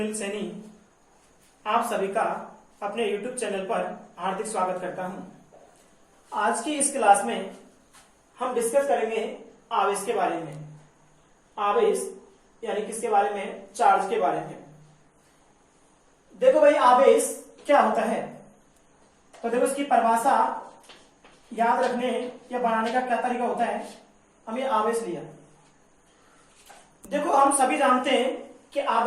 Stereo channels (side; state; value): both; identical; correlation 1.00